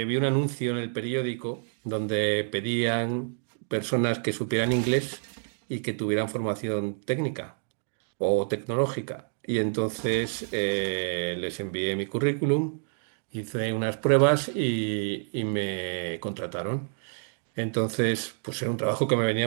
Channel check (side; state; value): left; silent; digital silence